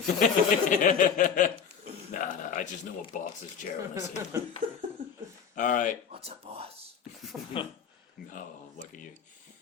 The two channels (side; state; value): right; quieter; 7.0 dB